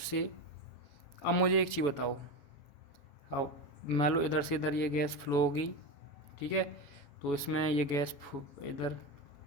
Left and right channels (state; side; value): late; right; 7.1 ms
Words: से। अब मुझे एक चीज़ बताओ, अब मान लो इधर से इधर ये गैस फ्लो होगी, ठीक है, तो इसमें ये गैस इधर